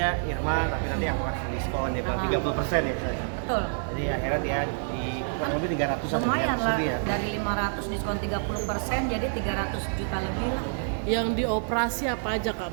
Irma tapi nanti aku kasih diskon dia bilang 30% ya saya. Betul. Jadi akhirnya dia di kurang lebih 300 Lumayan lah, ya. dari 500 diskon 30% jadi 300 juta lebih lah. Yang dioperasi apa aja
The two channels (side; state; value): left; silent; digital silence